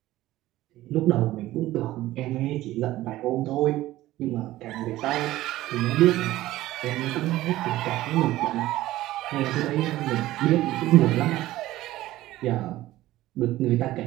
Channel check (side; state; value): left; quieter; 15.9 dB